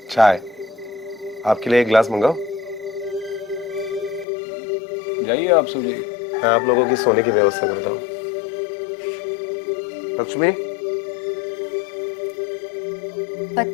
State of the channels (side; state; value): right; drops out; at 4.2 s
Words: चाय। आपके लिए एक गिलास मंगाओ? जाइए, आप सो जाइए। मैं आप लोगों की सोने की व्यवस्था करता हूँ। लक्ष्मी,